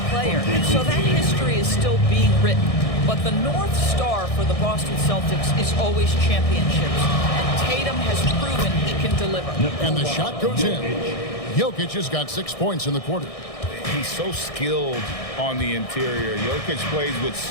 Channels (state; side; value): late; right; 1.6 ms